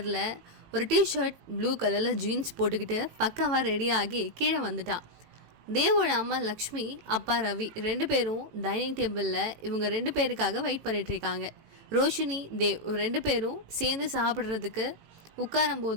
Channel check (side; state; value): left; late; 18 ms